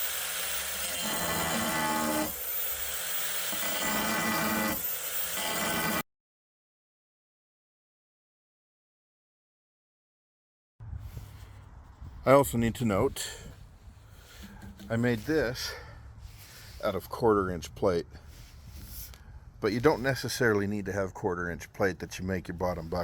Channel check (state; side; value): identical; both; correlation 1.00